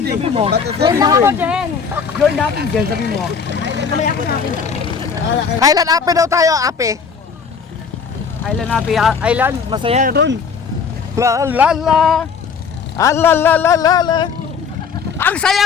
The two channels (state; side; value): quieter; right; 5.9 dB